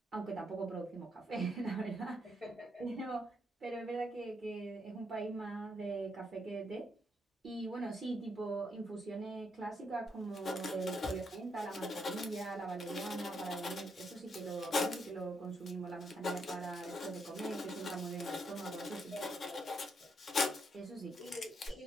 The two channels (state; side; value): normal; both; correlation 0.77